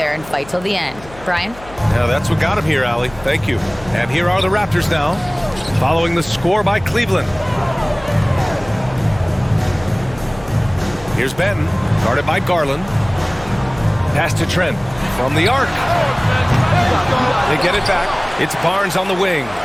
and fight till the end. Brian? Yeah, that's what got him here, Allie. Thank you. And here are the Raptors now, following the score by Cleveland. Here's Benton, guarded by Garland. Pass to Trent from the arc. They get it back. It's Barnes on the wing.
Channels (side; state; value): left; noise; hum, 20 dB below the sound